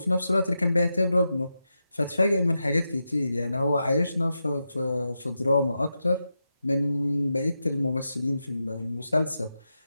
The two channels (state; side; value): inverted; both; correlation -0.88